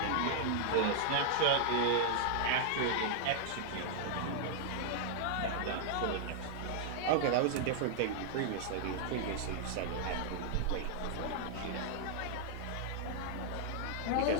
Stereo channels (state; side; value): different; both; correlation -0.01